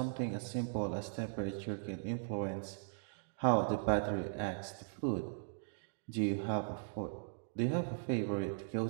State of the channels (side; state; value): left; silent; digital silence